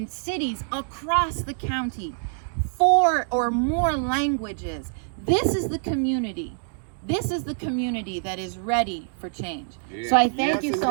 cities across the county, 4 or more languages. This is the community. This is the community that is ready for change. So I thank you so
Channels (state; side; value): silent; left; digital silence